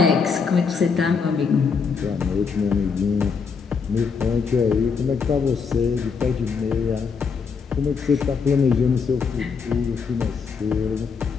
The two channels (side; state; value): right; quieter; 5.5 dB